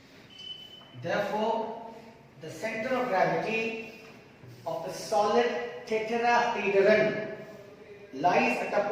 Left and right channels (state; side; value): identical; both; correlation 1.00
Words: Therefore, the center of gravity of the solid tetrahedron lies at a